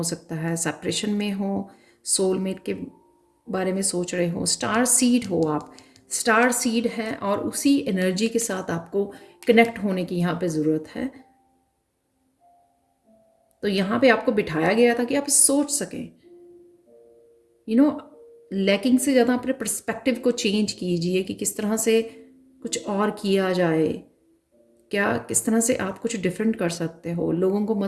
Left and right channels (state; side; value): identical; both; correlation 1.00